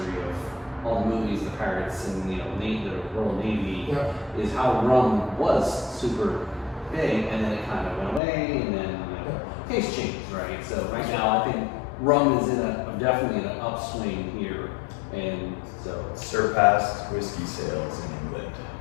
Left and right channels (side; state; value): right; drops out; at 8.2 s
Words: of all the movies, the pirates, and you know, the Royal Navy, is how rum was super big, and then it kind of went away, and then you know, taste changed, right? So right now, I think rum is definitely in an upswing here, and so Surpassed whiskey sales in England.